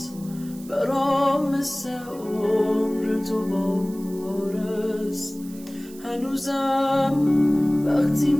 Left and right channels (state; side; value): noise; right; hiss, 21 dB below the sound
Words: برام مثل عمر دوباره است. هنوزم وقتی